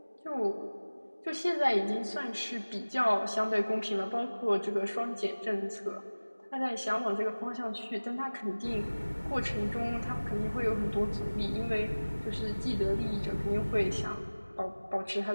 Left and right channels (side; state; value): both; inverted; correlation -1.00